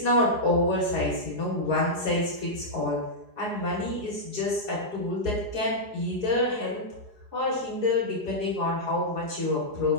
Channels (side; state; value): left; late; 4.8 ms